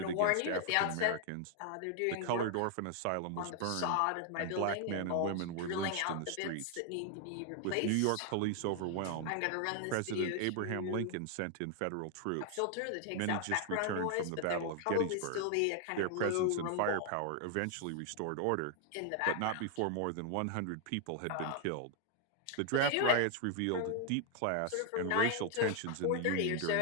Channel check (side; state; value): both; different; correlation 0.00